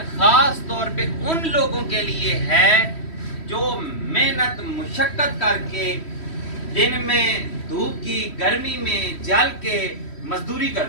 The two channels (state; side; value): late; right; 3.1 ms